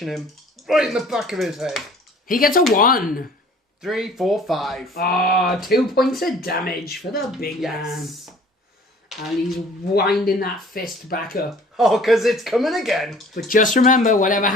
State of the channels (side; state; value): both; normal; correlation 0.51